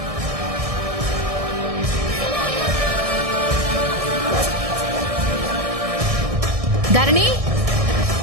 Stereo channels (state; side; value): late; left; 1.6 ms